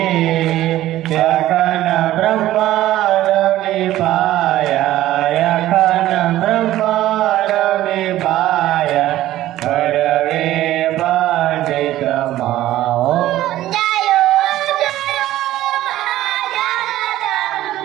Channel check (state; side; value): quieter; left; 14.5 dB